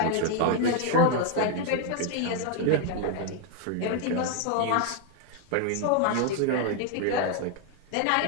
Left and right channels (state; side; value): different; both; correlation 0.00